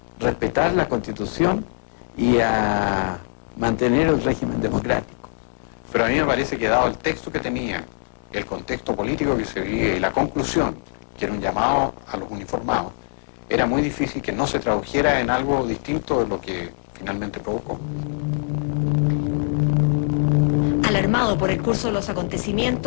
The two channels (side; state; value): right; silent; digital silence